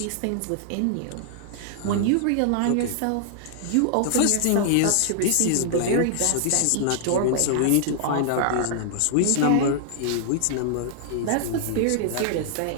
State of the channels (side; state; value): both; different; correlation -0.01